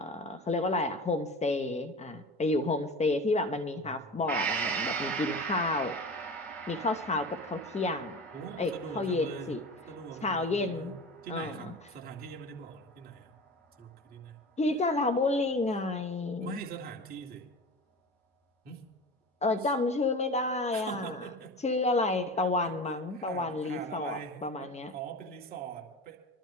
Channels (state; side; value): normal; both; correlation 0.33